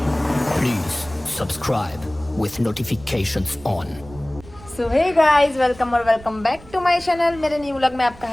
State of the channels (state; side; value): noise; right; rumble, 20 dB below the sound